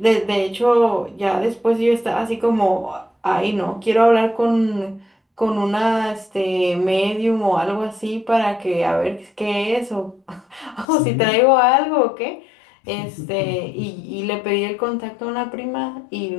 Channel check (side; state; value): right; drops out; at 10.9 s